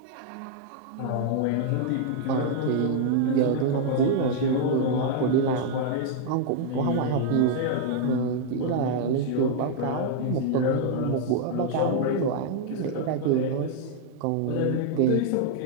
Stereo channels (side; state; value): both; different; correlation 0.00